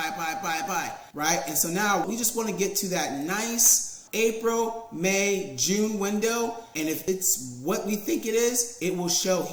right? And so now we just want to get to that nice April, May, June window, and if it's what we think it is, it will show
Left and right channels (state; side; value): identical; both; correlation 1.00